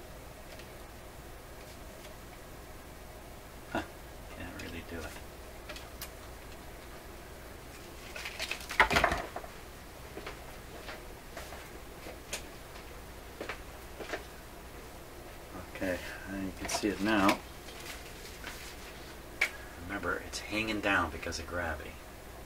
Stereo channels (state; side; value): identical; both; correlation 1.00